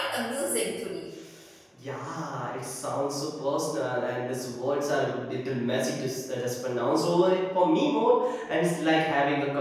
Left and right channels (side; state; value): both; identical; correlation 1.00